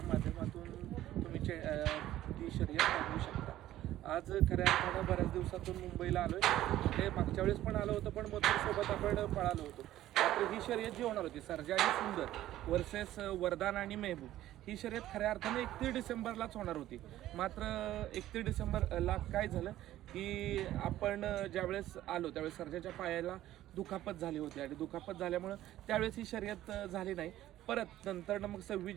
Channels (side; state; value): left; quieter; 13.9 dB